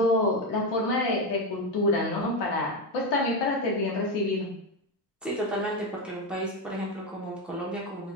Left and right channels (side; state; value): both; normal; correlation 0.11